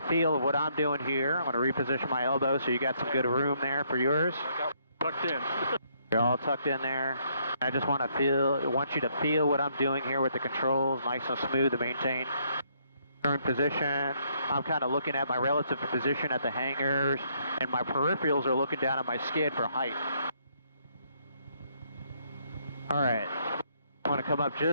feel of what I'm doing here. I'm going to reposition my elbow so you got some good room there for yours. I got tucked in. You're all tucked in there. I just want you to feel what I'm doing here with the controls, nice and smooth to maintain current position. I'm kind of looking at my relative position at the hangars, and my peripherals are looking down at my skid for height. All right, I want to come up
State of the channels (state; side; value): inverted; both; correlation -0.71